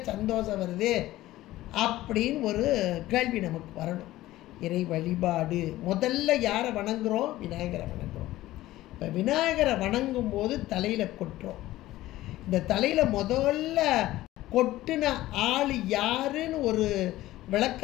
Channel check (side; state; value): right; quieter; 16.0 dB